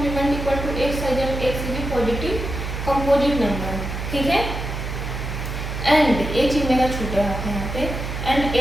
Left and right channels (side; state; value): right; noise; hum, 5 dB below the sound